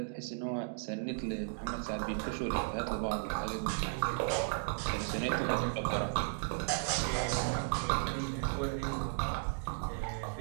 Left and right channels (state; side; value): silent; left; digital silence